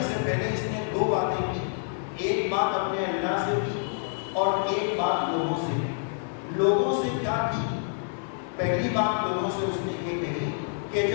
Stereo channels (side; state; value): right; silent; digital silence